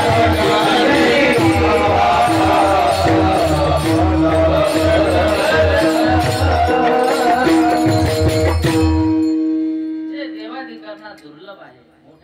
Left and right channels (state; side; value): identical; both; correlation 1.00